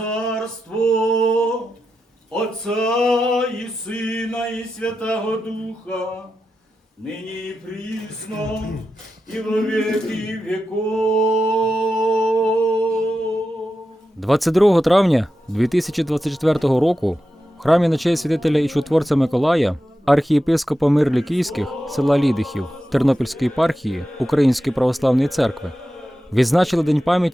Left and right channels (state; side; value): normal; both; correlation 0.90